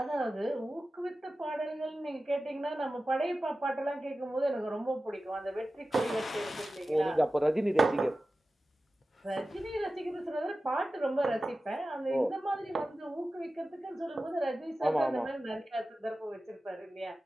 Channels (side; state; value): both; normal; correlation 0.95